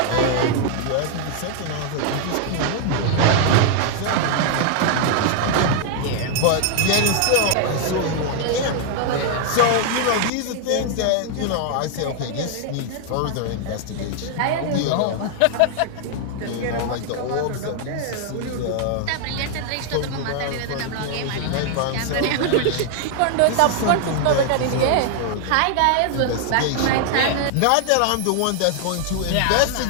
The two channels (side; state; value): both; different; correlation 0.00